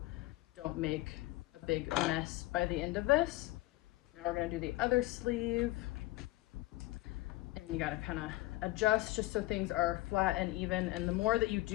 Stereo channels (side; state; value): right; quieter; 18.4 dB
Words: don't make a big mess by the end of this. Now we're going to do the other sleeve, and you got to kind of adjust just so things are flat and even, and the more that you